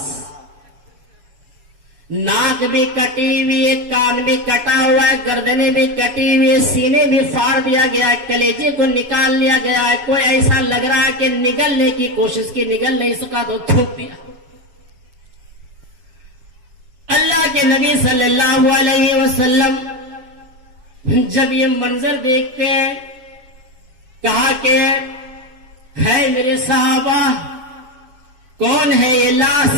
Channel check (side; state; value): left; late; 7.1 ms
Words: ناک بھی کٹی ہوئی ہے، کان بھی کٹا ہوا ہے، گردنیں بھی کٹی ہوئی ہے، سینے بھی پھاڑ دیا گیا ہے، کلیجے کو نکال لیا گیا ہے، کوئی ایسا لگ رہا ہے کہ نگلنے کی کوشش کی، نگل نہیں سکا تو تھوک دیا۔ اللہ کے نبی صلی اللہ علیہ وسلم جب یہ منظر دیکھتے ہیں، کہا کہ ہے میرے صحابہ، کون ہے یہ لاش؟